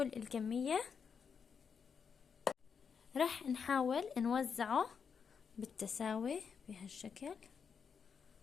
الكمية راح نحاول نوزعه بالتساوي بهالشكل.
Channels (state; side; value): quieter; right; 6.4 dB